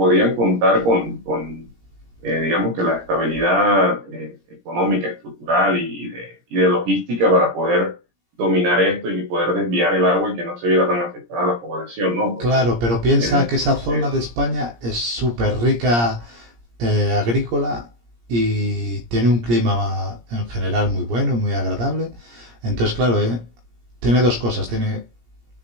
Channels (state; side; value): late; left; 17 ms